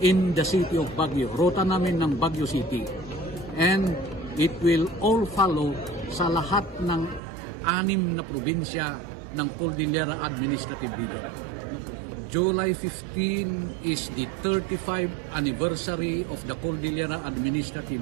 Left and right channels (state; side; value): drops out; left; at 7.2 s